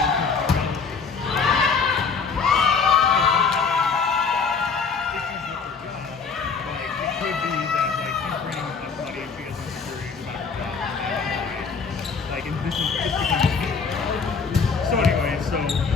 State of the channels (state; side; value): quieter; right; 5.2 dB